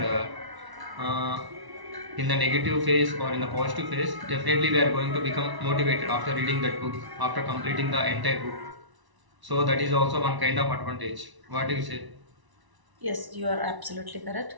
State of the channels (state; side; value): late; left; 1.0 ms